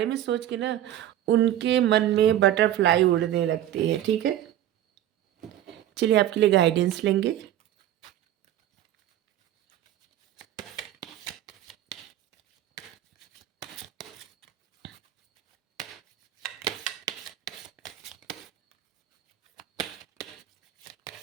में सोच के ना, उनके मन में बटरफ्लाई उड़ने लगती है, ठीक है? चलिए, आपके लिए गाइडेंस लेंगे।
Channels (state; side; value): quieter; left; 12.2 dB